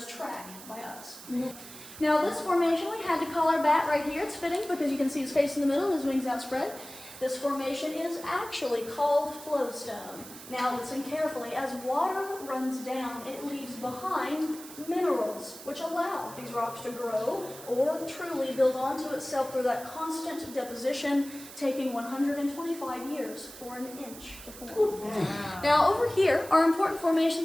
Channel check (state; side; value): noise; right; hiss, 15 dB below the sound